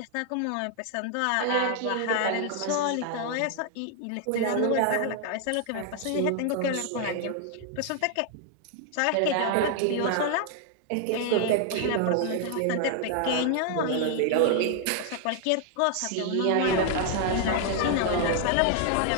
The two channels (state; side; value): different; both; correlation 0.00